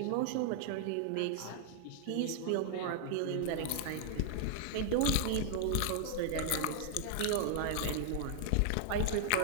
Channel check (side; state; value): both; different; correlation -0.01